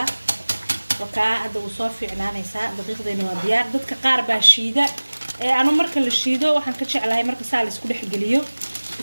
وكا هذا وصافي عنانا يسا دقيقة إنه ديار ضد كقاربة شيدة أنا مركل الشيدة وحن كتش على هاي مركز سالس كل حجليو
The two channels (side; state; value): both; inverted; correlation -1.00